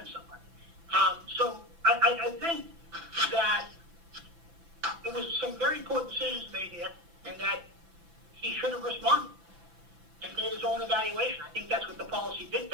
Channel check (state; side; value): late; left; 6.0 ms